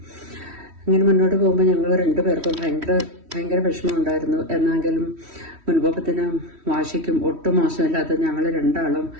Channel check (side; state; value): left; late; 3.1 ms